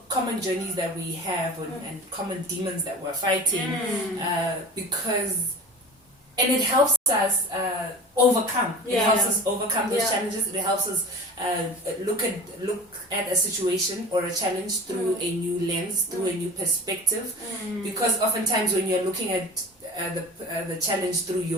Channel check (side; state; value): both; normal; correlation 0.37